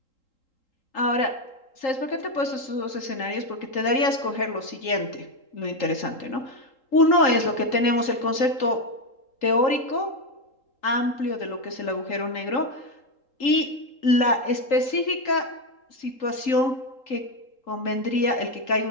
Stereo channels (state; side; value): late; right; 3.8 ms